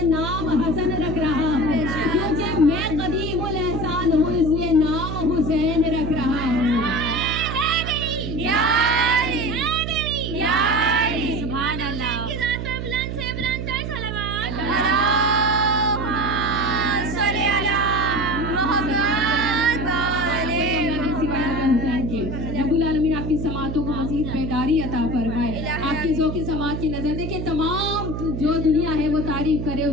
बेदारी अता फरमाए। आपकी ज़ौक़ समात की नज़र देखिए, तमाम जो दुनिया है वो तारीफ करे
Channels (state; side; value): noise; right; hum, 5 dB below the sound